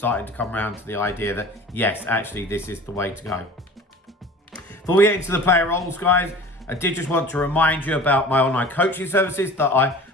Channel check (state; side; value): normal; both; correlation 0.41